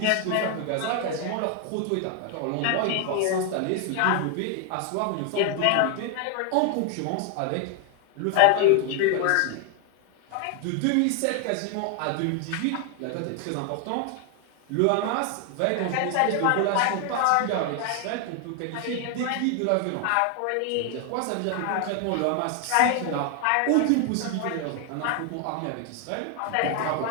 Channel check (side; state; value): both; different; correlation 0.01